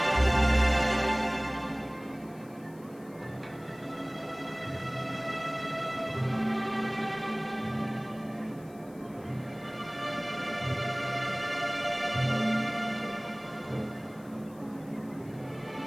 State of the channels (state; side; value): noise; left; hiss, 27 dB below the sound